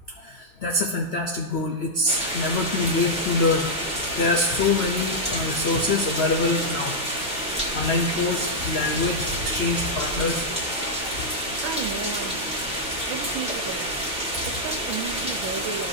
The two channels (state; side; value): normal; both; correlation -0.05